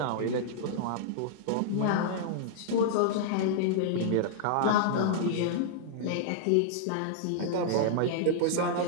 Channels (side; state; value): both; different; correlation -0.02